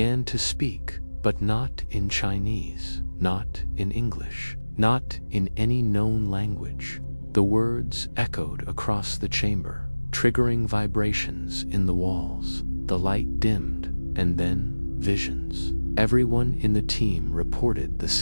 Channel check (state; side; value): inverted; both; correlation -1.00